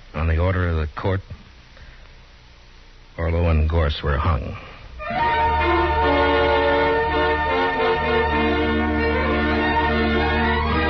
on the order of the court, Orlo and Gorse were hung.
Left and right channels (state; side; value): identical; both; correlation 1.00